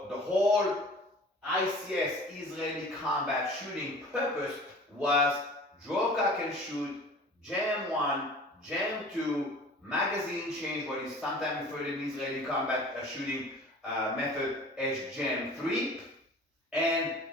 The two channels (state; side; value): normal; both; correlation 0.44